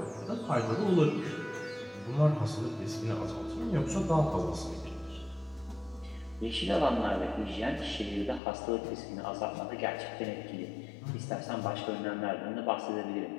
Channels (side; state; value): right; drops out; at 8.4 s